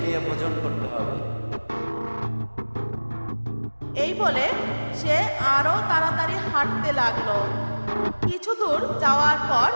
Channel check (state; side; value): inverted; both; correlation -1.00